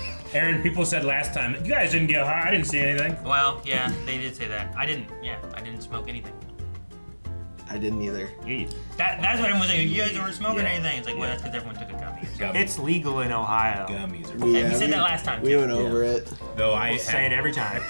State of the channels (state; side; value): inverted; both; correlation -1.00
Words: Aaron, people said last time, you guys didn't get high, I didn't see anything. well, yeah, they did say that. I didn't smoke anything. I didn't either. Yeah. That's what everyone was saying. You guys weren't smoking anything. It's like, well, that's because everyone took a gummy. Gummies. It's legal in Ohio. Gummies are Yeah, we said that last time, We too. went over it. Though I We'll say it every time,